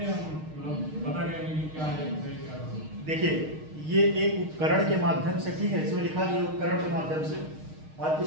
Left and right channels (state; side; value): late; left; 6.5 ms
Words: मतलब पता करेंगे कि क्या है? देखिए, ये एक उपकरण के माध्यम से, ठीक है, इसमें लिखा दिया उपकरण के माध्यम से, और